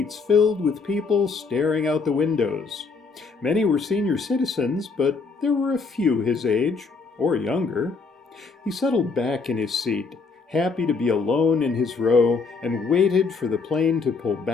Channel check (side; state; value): right; quieter; 4.5 dB